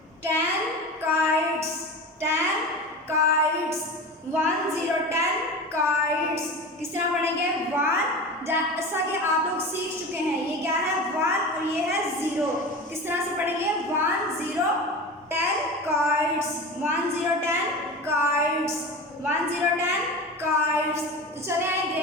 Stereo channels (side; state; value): both; normal; correlation 0.30